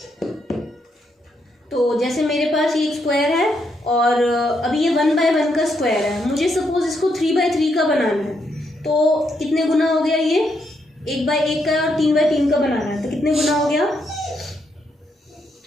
तो जैसे मेरे पास ये एक स्क्वायर है और अभी ये 1/1 का स्क्वायर है, मुझे सपोज इसको 3/3 का बनाना है, तो कितने गुना हो गया, ये 1/1 का और 3/3 का बनाना है तो कितने गुना हो गया,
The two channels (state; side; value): normal; both; correlation 0.78